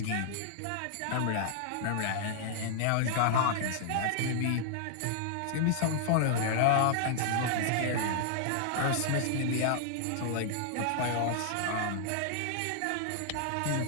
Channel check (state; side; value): different; both; correlation -0.01